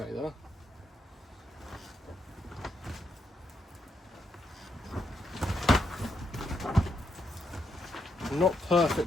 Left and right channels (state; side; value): normal; both; correlation 0.79